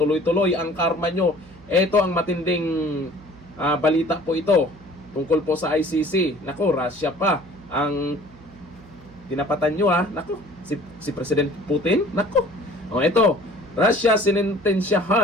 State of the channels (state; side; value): noise; right; hum, 23 dB below the sound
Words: ang karma nyo. Ito ang matinding balita po ito tungkol po sa ICC. Nako, Russia pa ang tinapatan nyo ha. Nako, si President Putin. Nako, o ito, Russia